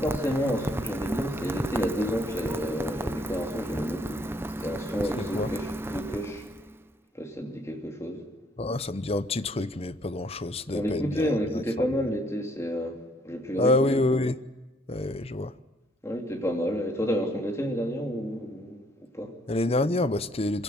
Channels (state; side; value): normal; both; correlation 0.65